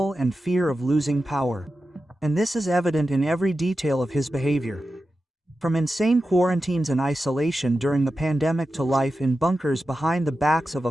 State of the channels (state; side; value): normal; both; correlation 0.92